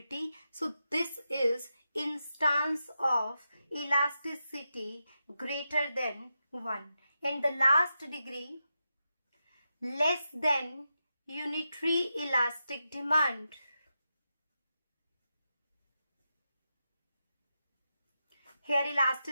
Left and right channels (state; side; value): inverted; both; correlation -0.88